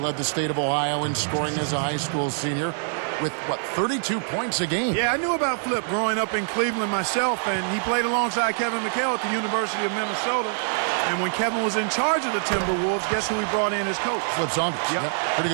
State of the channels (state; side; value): silent; left; 60 dB below the other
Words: the state of Ohio in scoring as a high school senior. with, 32 points a game. Yeah, I knew about Flip growing up in Cleveland myself, and he played alongside Kevin McHale at the University of Minnesota. And when Kevin was in charge of the Timberwolves, guess who he brought in as coach? Flip Saunders. Yep. Pretty